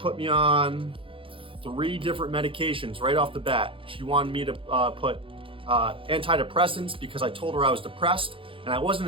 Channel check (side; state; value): left; late; 0.25 ms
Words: me on 3 different medications right off the bat. She wanted me to put antidepressants because I told her I was depressed, and I